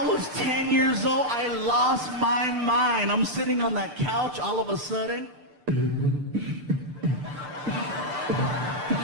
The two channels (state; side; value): late; left; 6.7 ms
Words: was 10 years old. I lost my mind. I'm sitting on that couch all of a sudden.